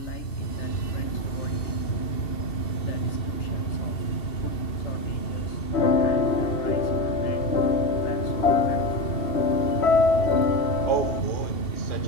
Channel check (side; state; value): right; late; 2.7 ms